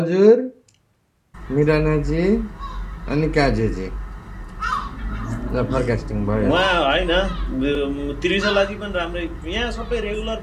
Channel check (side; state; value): both; identical; correlation 1.00